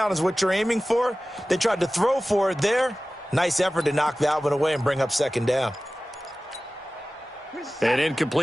is what you're aiming for. They tried to throw for it there. Nice effort to knock that one away and bring up second down. An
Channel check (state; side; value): normal; both; correlation 0.97